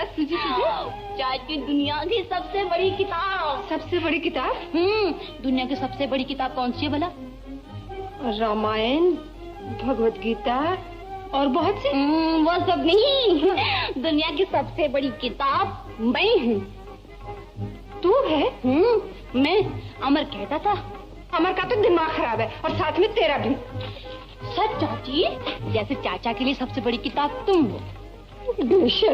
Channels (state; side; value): identical; both; correlation 1.00